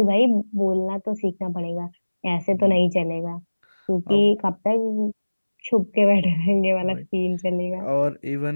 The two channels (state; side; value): inverted; both; correlation -1.00